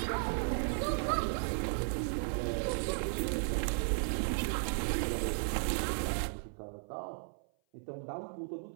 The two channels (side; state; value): left; silent; 54 dB below the other